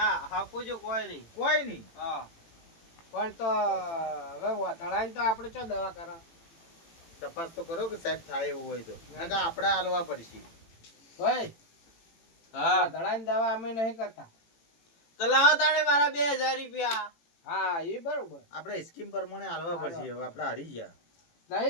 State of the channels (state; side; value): late; right; 18 ms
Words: હપ્પુજુ કોઈ નહીં કોઈ નહીં હા પણ તો હવે વધળાને તો આપણે ચો દવા કરો તપાસ તો કરો કે સાહેબ થાય એવું હોય તો નકા આપણે હાલવા પડશે ભાઈ હા વધળાની દવા અમે નહીં કરતા તો લાવો તાણે મારા 2000 રૂપિયા હા એ બરોબર આપણે સ્કીમ પ્રમાણે હાલવા પડશે હવે આપણે હારી ગયા